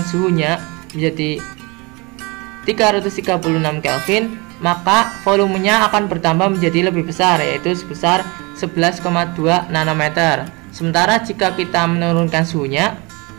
menjadi 336 Kelvin, maka volumenya akan bertambah menjadi lebih besar, yaitu sebesar 11,2 nanometer. Sementara jika kita menurunkan suhunya,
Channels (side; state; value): left; quieter; 27.2 dB